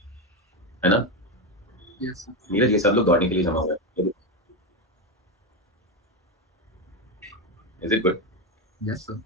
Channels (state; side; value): normal; both; correlation 0.12